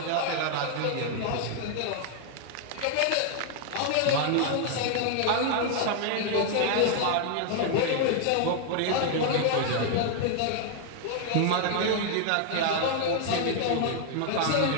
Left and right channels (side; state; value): both; different; correlation 0.00